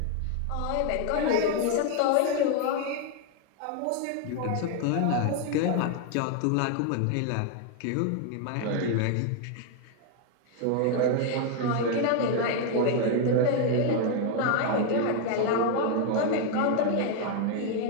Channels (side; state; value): both; different; correlation 0.01